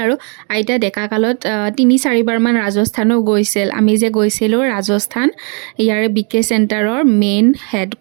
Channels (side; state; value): left; quieter; 37.4 dB